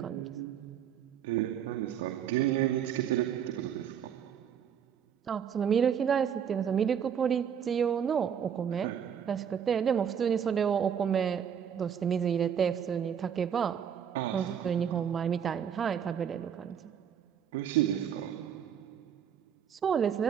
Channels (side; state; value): left; quieter; 8.2 dB